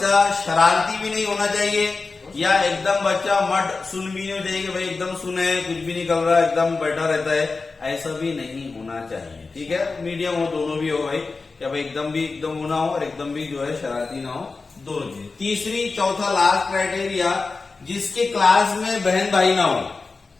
शरारती भी नहीं होना चाहिए, या एकदम बच्चा मट सुन भी नहीं चाहिए कि भाई एकदम सुने, कुछ भी नहीं कर रहा, एकदम बैठा रहता है, ऐसा भी नहीं होना चाहिए। ठीक है, मीडियम हो, दोनों भी हो भाई, क्या भाई एकदम भी एकदम होना हो और एकदम भी जो है शरारती ना हो, दोनों चीजें। तीसरी, चौथा, लास्ट क्राइटेरिया, जिसके क्लास में बहन भाई ना हो।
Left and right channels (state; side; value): quieter; right; 4.1 dB